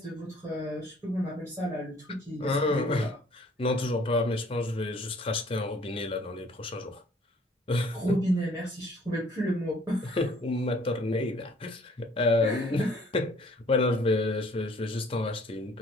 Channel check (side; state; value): both; normal; correlation 0.57